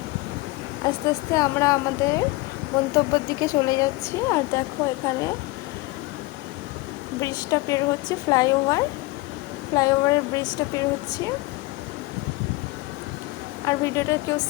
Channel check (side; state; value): right; quieter; 21.7 dB